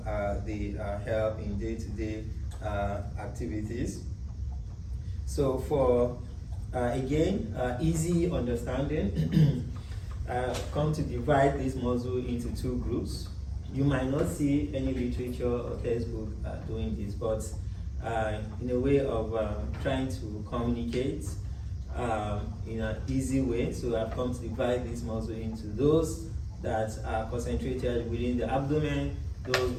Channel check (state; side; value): identical; both; correlation 1.00